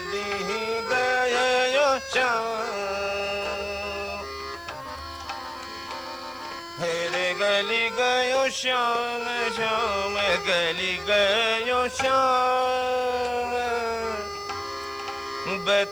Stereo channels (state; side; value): noise; left; hiss, 28 dB below the sound